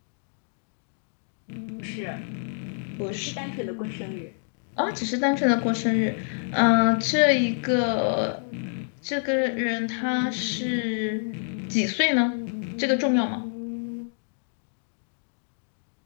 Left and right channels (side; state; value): right; silent; digital silence